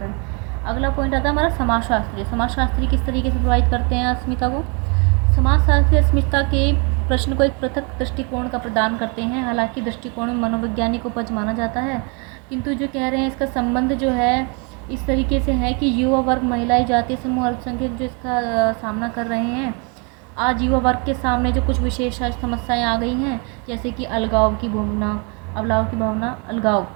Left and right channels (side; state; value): left; quieter; 34.3 dB